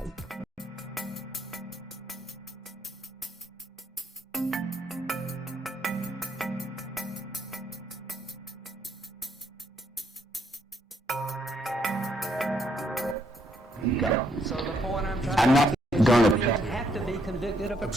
So the point I'm not going you to have to be convicted of a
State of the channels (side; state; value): both; normal; correlation 0.73